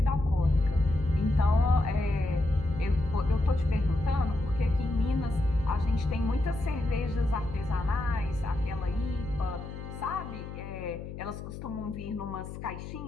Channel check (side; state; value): left; noise; hum, 10 dB below the sound